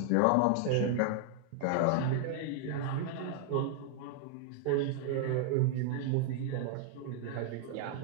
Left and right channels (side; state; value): both; different; correlation 0.00